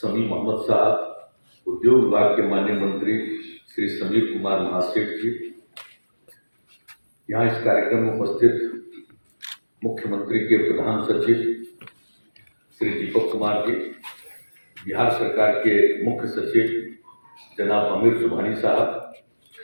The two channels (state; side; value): inverted; both; correlation -1.00